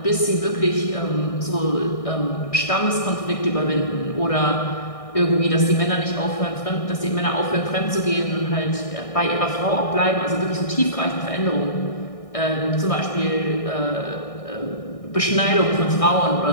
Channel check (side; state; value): right; late; 1.6 ms